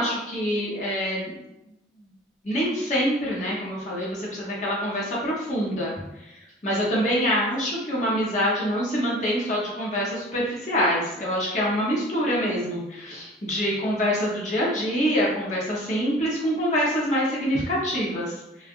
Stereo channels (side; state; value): both; normal; correlation 0.43